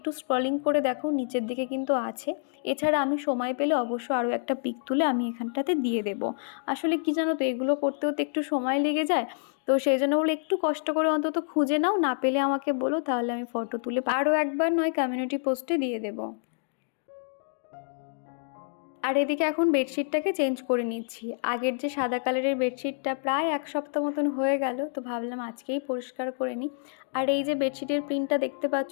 স্ক্রলিং করে দেখো, নিচের দিকে কিন্তু আছে। এছাড়া আমি সময় পেলে অবশ্য আরও একটা পিক তুলে আমি এখানটাতে দিয়ে দেবো। আসলে কি জানো তো, এগুলো করতেও তো একটু সময় লেগে যায়। তো সেই জন্য বলে একটু কষ্ট করে অন্তত খুঁজে নাও, না পেলে আমাকে বলো, তাহলে আমি ফটো তুলে আরও একবার নয় কমিউনিটি পোস্টে দিয়ে দেবো। আর এদিকে এখন বেডশিটটাকে চেঞ্জ করে নিচ্ছি। আগের যে সাদা কালারের বেডশিটটা প্রায় 1 সপ্তাহ মতন হয়ে গেল, তো ভাবলাম আজকেই পরিষ্কার করে নিই। আর এই যে বেডশিটের প্রিন্টটা দেখতে পাচ্ছ,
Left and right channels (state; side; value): silent; right; 59 dB below the other